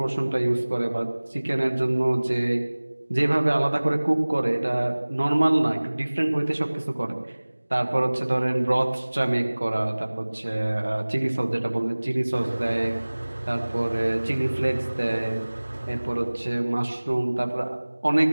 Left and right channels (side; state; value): both; inverted; correlation -1.00